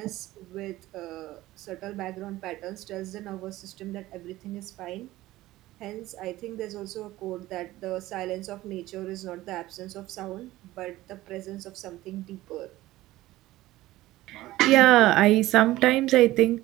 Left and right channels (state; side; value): quieter; left; 16.8 dB